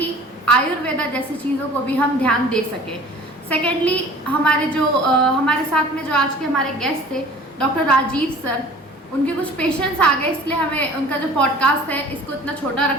आयुर्वेदा जैसी चीज़ों को भी हम ध्यान दे सकें। सेकेंडली, हमारे साथ में जो आज के हमारे गेस्ट थे डॉक्टर राजीव सर, उनके कुछ पेशेंट्स आ गए इसलिए हमें उनका जो पॉडकास्ट है इसको इतना छोटा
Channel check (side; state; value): both; normal; correlation 0.46